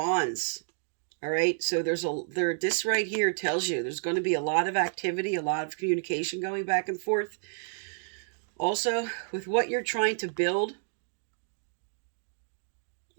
All right, so this right here tells you there's going to be a lot of activity, a lot of communication going back and forth. Also, with what you're trying to build,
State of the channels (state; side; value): silent; left; digital silence